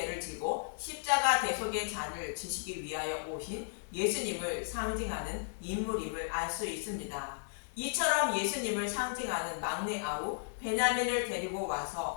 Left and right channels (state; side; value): silent; right; 55 dB below the other